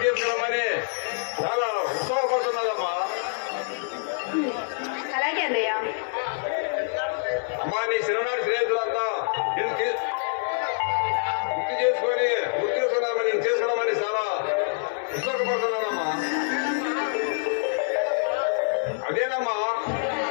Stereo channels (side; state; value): right; silent; digital silence